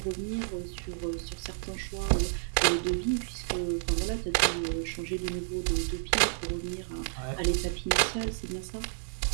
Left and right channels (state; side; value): silent; left; digital silence